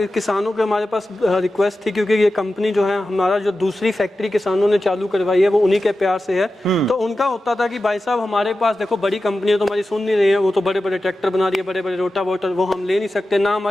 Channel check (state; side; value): normal; both; correlation 0.93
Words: किसानों के हमारे पास रिक्वेस्ट थी, क्योंकि ये कंपनी जो है हमारा, जो दूसरी फैक्ट्री किसानों ने चालू करवाई है, वो उन्हीं के प्यार से है। तो उनका होता था कि भाई साहब हमारे पास देखो, बड़ी कंपनियां तो हमारी सुन नहीं रही है, वो तो बड़े बड़े ट्रैक्टर बना रही है, बड़े बड़े रोटावेटर, वो हम ले नहीं सकते, ना